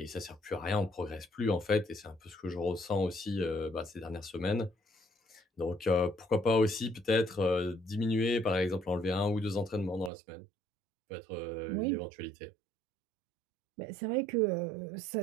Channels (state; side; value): drops out; left; at 10.1 s